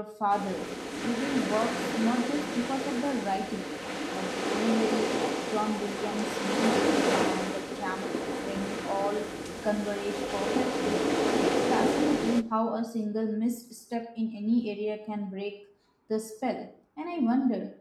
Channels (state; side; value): identical; both; correlation 1.00